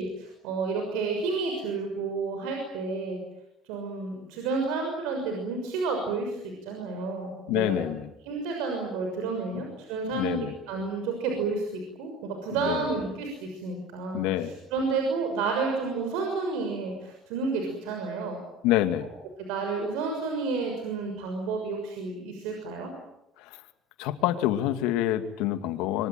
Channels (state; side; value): normal; both; correlation 0.32